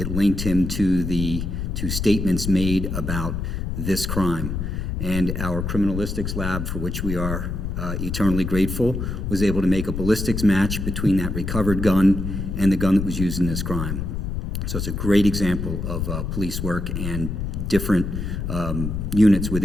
linked him to statements made about this crime. And our criminalistics lab, for which we are eternally grateful, was able to make a ballistics match between that recovered gun and the gun that was used in this crime. So it's a great example of police work and different units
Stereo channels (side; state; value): left; noise; rumble, 3 dB below the sound